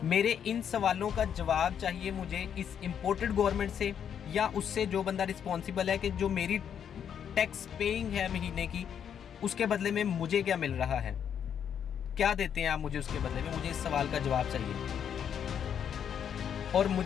मेरे इन सवालों का जवाब चाहिए मुझे इस इम्पोर्टेड गवर्नमेंट से, या उससे जो बंदा रिस्पॉन्सिबल है कि जो मेरी टैक्स पेइंग है महीने की, उसके बदले में मुझे क्या मिल रहा है, क्या देते हैं आप मुझे उसके बदले में। मुझे इस सवाल का जवाब चाहिए, और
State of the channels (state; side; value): quieter; right; 8.4 dB